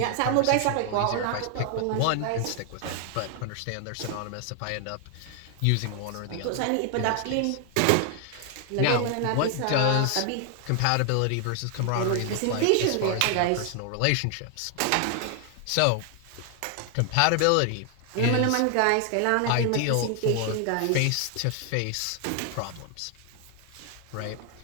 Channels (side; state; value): both; different; correlation 0.00